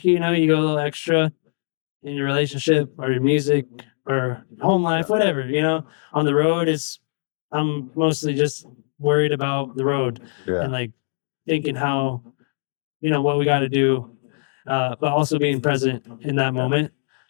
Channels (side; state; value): right; silent; digital silence